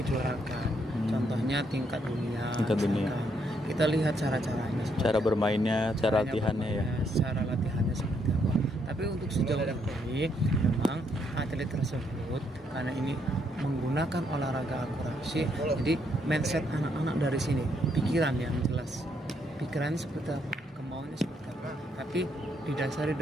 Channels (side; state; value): both; normal; correlation 0.74